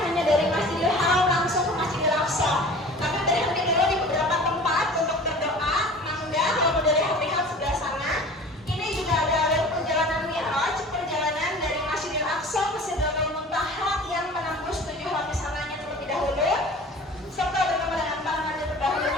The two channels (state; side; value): normal; both; correlation 0.42